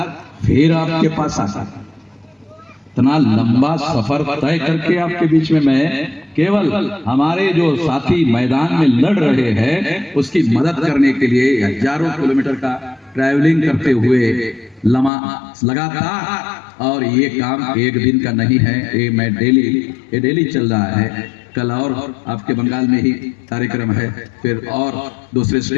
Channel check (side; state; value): right; drops out; at 15.1 s